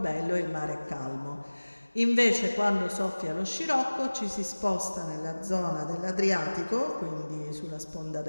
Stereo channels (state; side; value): inverted; both; correlation -1.00